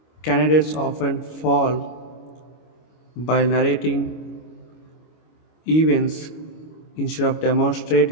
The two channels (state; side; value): late; right; 25 ms